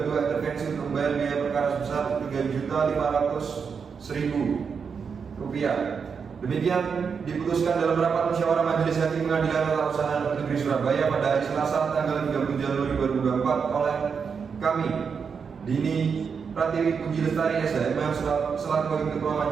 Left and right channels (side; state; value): left; quieter; 6.1 dB